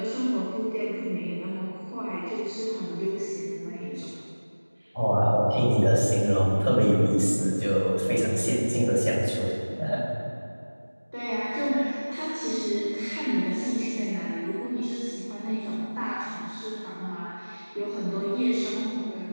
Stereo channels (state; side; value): inverted; both; correlation -1.00